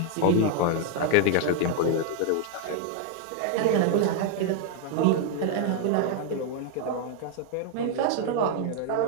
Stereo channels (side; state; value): both; different; correlation 0.00